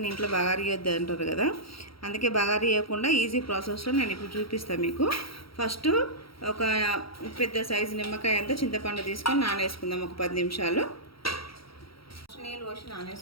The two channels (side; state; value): right; late; 0.75 ms